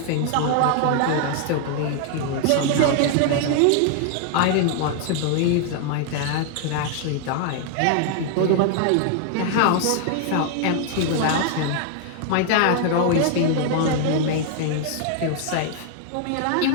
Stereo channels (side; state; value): both; different; correlation 0.00